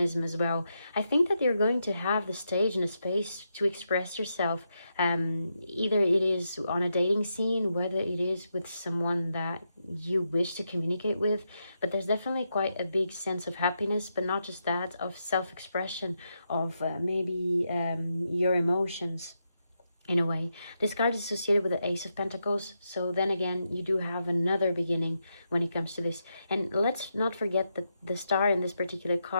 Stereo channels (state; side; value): inverted; both; correlation -0.84